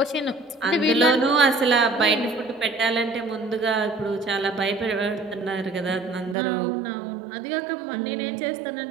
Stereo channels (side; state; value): left; drops out; at 6.4 s